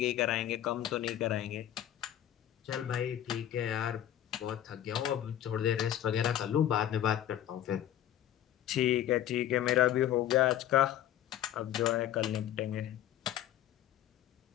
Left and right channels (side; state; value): right; quieter; 11.7 dB